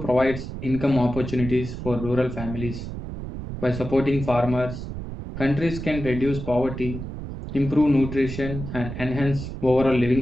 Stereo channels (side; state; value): right; noise; rumble, 8 dB below the sound